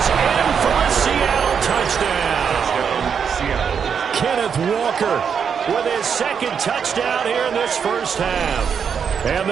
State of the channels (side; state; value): left; quieter; 7.0 dB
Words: in for a Seattle touchdown. Kenneth Walker with his 2nd touchdown here in this first half. And